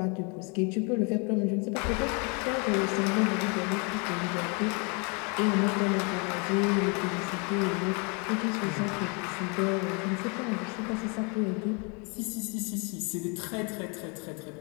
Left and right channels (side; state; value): right; quieter; 33.5 dB